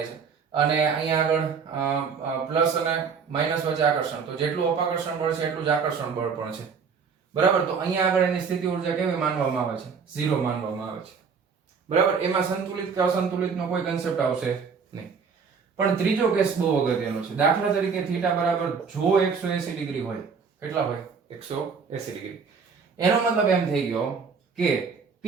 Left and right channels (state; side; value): quieter; left; 5.7 dB